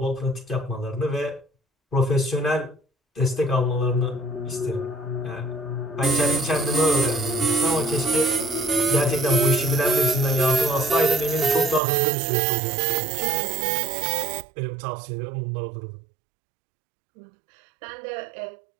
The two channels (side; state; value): left; drops out; at 11.8 s